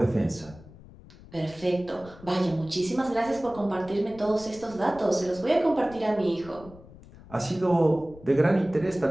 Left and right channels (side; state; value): left; noise; rumble, 20 dB below the sound